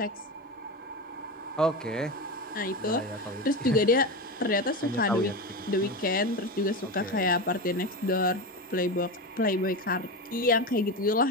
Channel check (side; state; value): both; normal; correlation 0.20